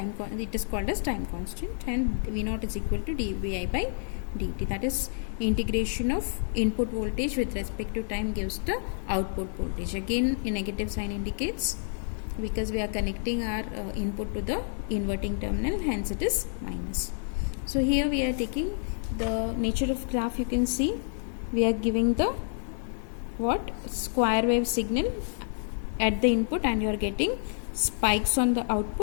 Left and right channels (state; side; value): silent; right; digital silence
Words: it is called as time constant, and V0 is equal to dVi by dt. That is integration of input voltage with respect to time gives the output voltage. Again a negative sign indicates because we are connecting our input to the inverting terminal, hence it is minus. So here we are taking the nature of graph. You can see we are giving the square wave signal at the input, and you are getting spikes on the